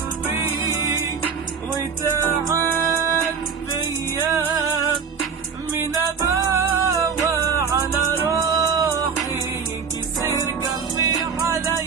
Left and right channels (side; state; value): left; quieter; 6.1 dB